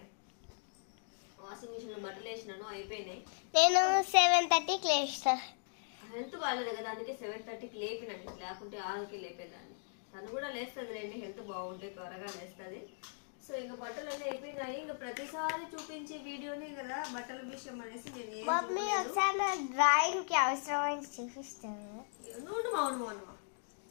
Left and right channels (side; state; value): right; silent; digital silence